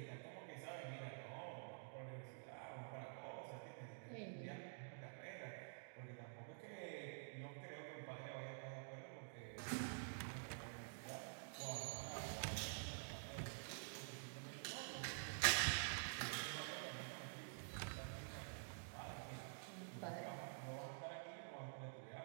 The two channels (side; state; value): left; silent; digital silence